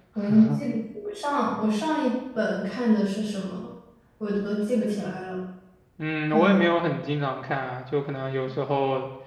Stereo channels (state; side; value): identical; both; correlation 1.00